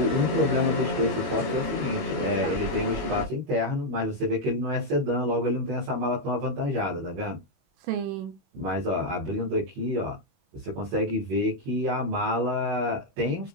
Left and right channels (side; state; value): left; late; 21 ms